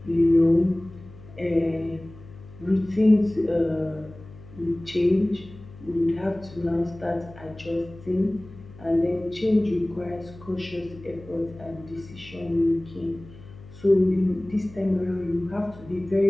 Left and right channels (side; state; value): left; noise; hum, 19 dB below the sound